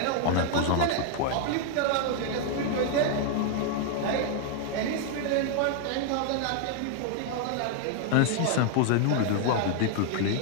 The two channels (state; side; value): different; both; correlation 0.00